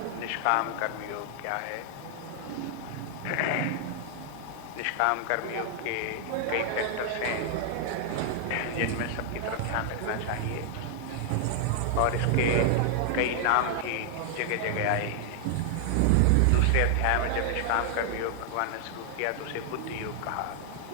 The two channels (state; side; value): different; both; correlation 0.00